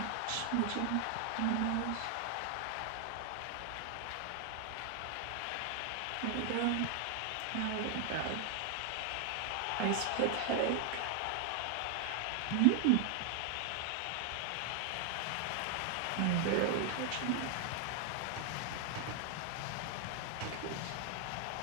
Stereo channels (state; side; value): different; both; correlation 0.00